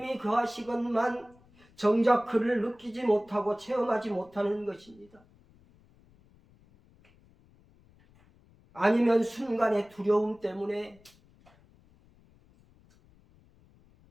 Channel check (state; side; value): noise; left; rumble, 29 dB below the sound